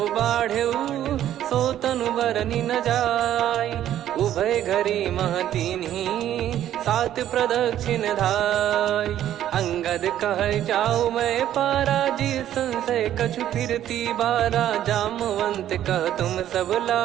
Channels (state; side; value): quieter; left; 11.6 dB